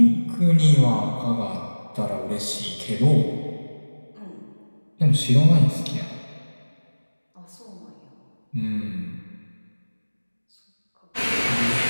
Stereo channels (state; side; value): inverted; both; correlation -1.00